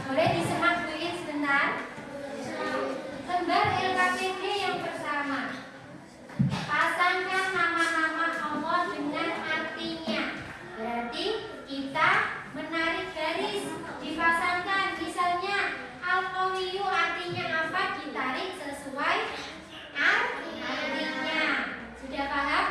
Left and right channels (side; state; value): both; identical; correlation 1.00